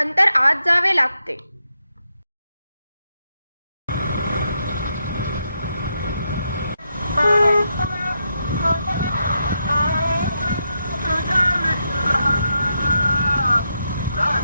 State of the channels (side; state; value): both; inverted; correlation -0.82